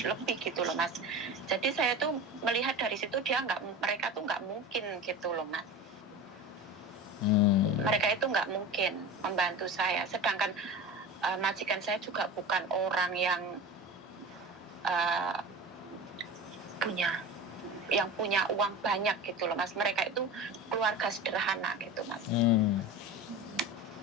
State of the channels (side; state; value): both; normal; correlation 0.31